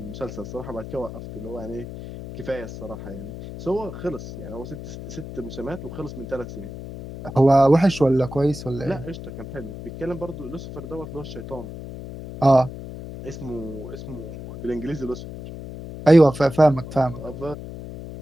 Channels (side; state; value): left; noise; hum, 11 dB below the sound